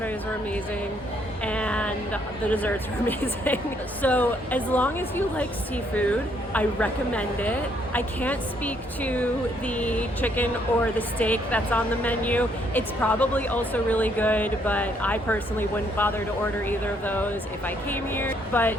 were amazing, and the desserts were amazing. So as long as you like seafood, I recommend it. I can't speak to the chicken or the steak that's on the menu. It's probably also really good, but I personally wouldn't bother to order either of those if I came here. But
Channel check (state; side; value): normal; both; correlation 0.70